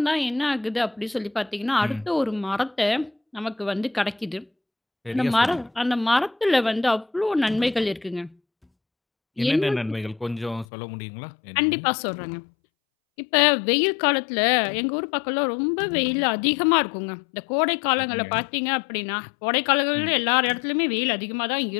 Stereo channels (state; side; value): drops out; right; at 10.7 s